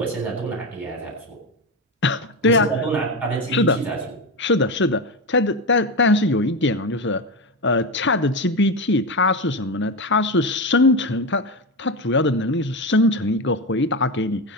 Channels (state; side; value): normal; both; correlation 0.16